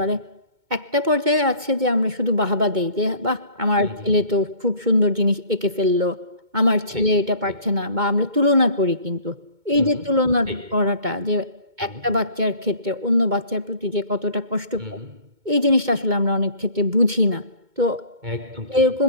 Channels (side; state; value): left; late; 2.2 ms